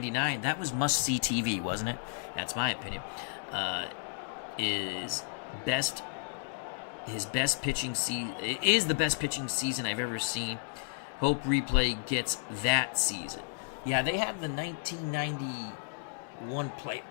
that was must-see TV, wasn't it? That's my opinion. His best pitching season is the best pitching season I've ever seen. Hope Replay gets that season. Yeah, they have the 1991 playoff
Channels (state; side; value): silent; right; 56 dB below the other